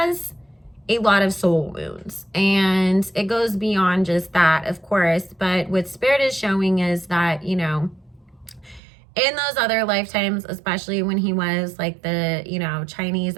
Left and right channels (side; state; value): left; drops out; at 8.8 s